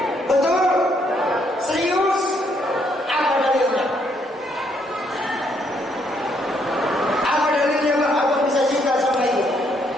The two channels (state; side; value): normal; both; correlation 0.72